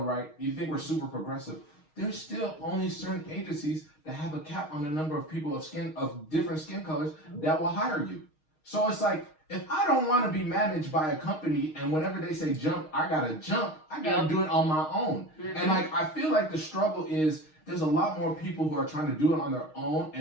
right? You think we're super progressive. There's still only certain agencies that have a cap on the number of people of different skin colors that will hire you. So it's like, if I don't want to be managed by a company and whenever they say jump, I gotta jump. I gotta do it on my own. Mhm. And like, I feel like the struggle is there's a lot more people who are trying to do it on their own,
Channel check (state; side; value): late; right; 6.4 ms